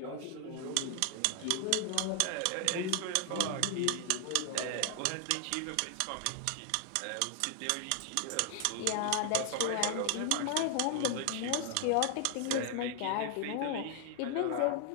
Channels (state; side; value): different; both; correlation 0.00